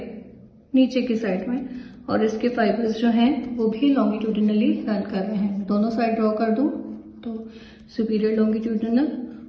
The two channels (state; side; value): identical; both; correlation 1.00